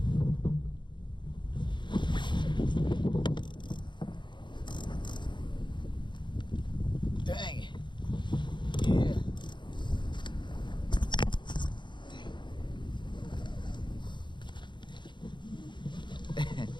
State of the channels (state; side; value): late; right; 0.22 ms